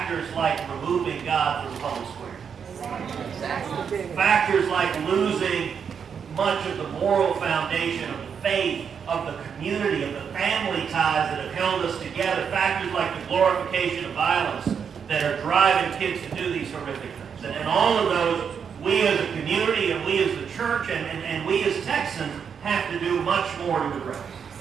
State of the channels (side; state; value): left; quieter; 7.0 dB